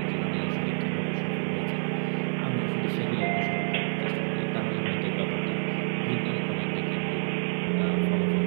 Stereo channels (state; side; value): silent; left; digital silence